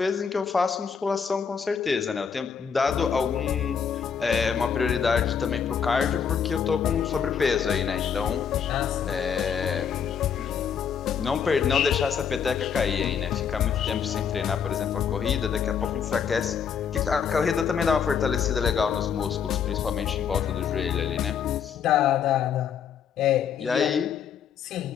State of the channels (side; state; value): right; quieter; 7.2 dB